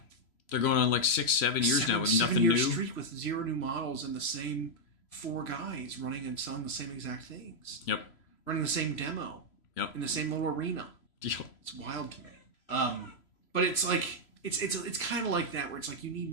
going on like 6-7 years now with nothing 7-year new. Streak with 0 new models and the same 4 guys running and selling the same exact things. Yep. Running the same demo. Yep. In the same little arena. Yep. It's wild to me. But it's like it's kind of like that where it's like you need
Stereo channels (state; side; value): late; right; 3.0 ms